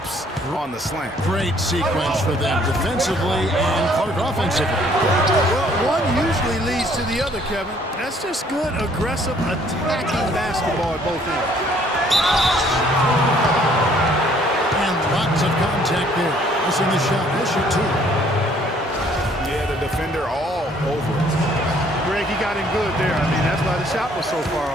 on the slant. Great sequence for them defensively and Clark offensively. Well, one usually leads to the other, Kevin. That's just good, aggressive, attacking basketball at both ends. And lots of contact there. Missing the shot. He'll shoot 2. Yeah, the defender all over it. Greg, he got him good there. I mean, that's why the shot was so far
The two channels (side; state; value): both; normal; correlation 0.61